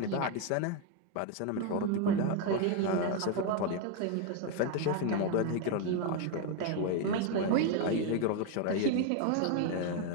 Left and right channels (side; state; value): both; different; correlation 0.01